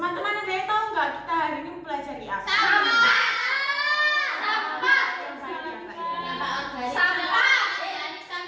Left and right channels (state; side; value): identical; both; correlation 1.00